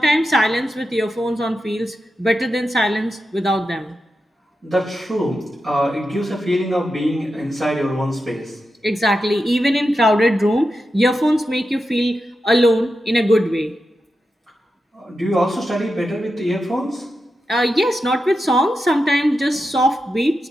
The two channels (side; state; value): both; normal; correlation 0.89